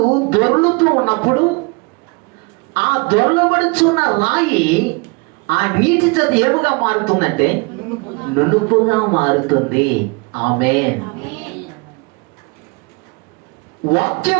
దొర్లుతూ ఉన్నప్పుడు ఆ దొర్లబడుచున్న రాయి ఆ నీటి చేత ఏముగా మారుతుందంటే నునుపుగా మారుతుంది. ఆమేన్.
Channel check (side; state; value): left; quieter; 29.2 dB